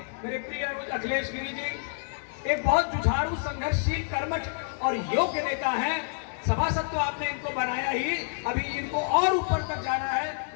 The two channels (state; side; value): silent; right; 59 dB below the other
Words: मेरे प्रिय अखिलेश गिरी जी एक बहुत जुझारू, संघर्षशील, कर्मठ और योग्य नेता हैं। सभासद तो आपने इनको बनाया ही, अभी इनको और ऊपर तक जाना है।